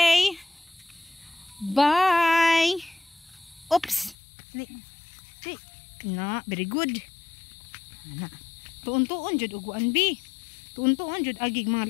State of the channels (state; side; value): drops out; right; at 4.2 s